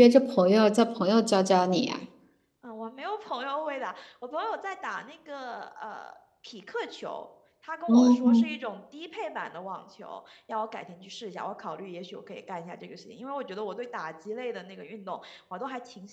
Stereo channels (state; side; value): identical; both; correlation 1.00